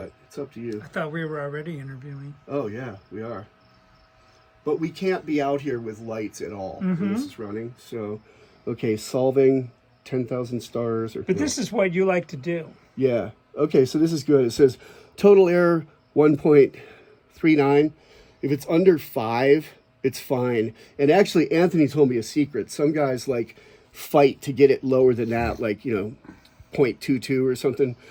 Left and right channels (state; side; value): identical; both; correlation 1.00